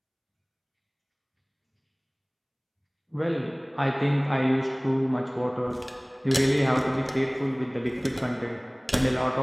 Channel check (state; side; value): identical; both; correlation 1.00